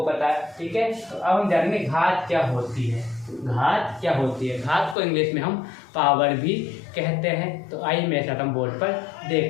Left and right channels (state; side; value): drops out; right; at 5.0 s